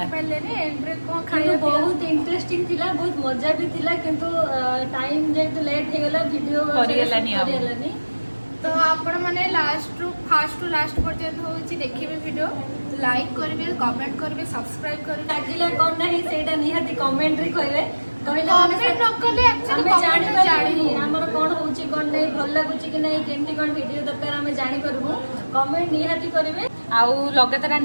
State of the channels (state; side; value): inverted; both; correlation -1.00